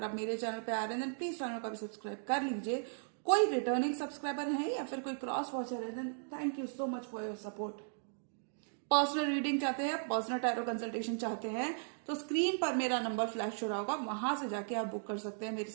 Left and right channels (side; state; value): left; silent; digital silence